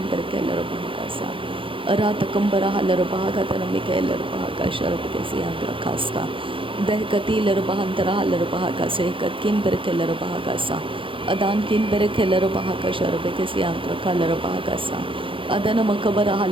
berkeler bahakasa arada kambara halar bahakadana mikahalar bahakasha rabeke siambre kasta dehkati larbahantara larbahaka se katkin berke larbahaka sa adan kin berke larbahaka sharbeke siantra larbahaka sa adana makabara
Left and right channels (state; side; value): late; left; 0.25 ms